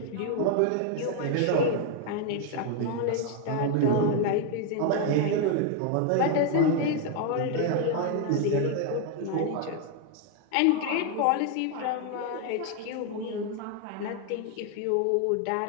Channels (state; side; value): different; both; correlation 0.01